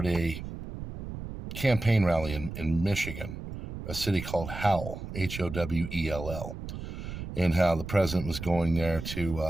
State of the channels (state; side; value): noise; right; rumble, 9 dB below the sound